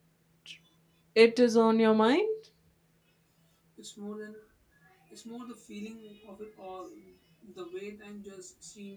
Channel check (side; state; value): both; identical; correlation 1.00